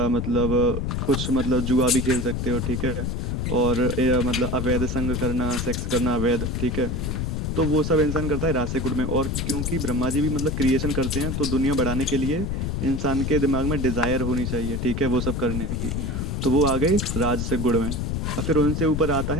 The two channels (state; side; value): noise; left; rumble, 1 dB below the sound